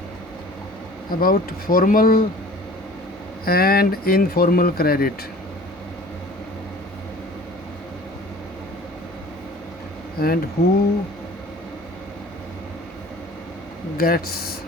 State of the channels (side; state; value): both; normal; correlation 0.46